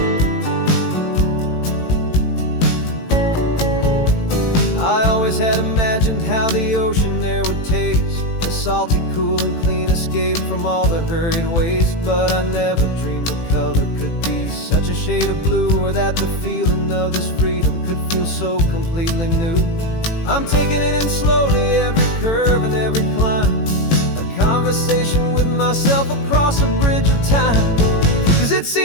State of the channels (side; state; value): right; late; 18 ms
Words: I always had imagined how the ocean there would taste, a salty, cool, and clean escape from all the hurried waste. But I never dreamed the color could be such a shade of blue, or that the feeling of this freedom could feel so completely new. I'm taking it in slowly, every curve and every climb, a conversation with myself across a bridge of time. 'Cause it's